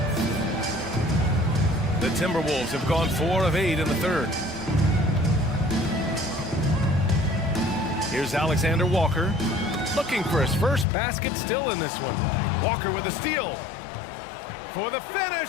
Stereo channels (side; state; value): right; drops out; at 10.9 s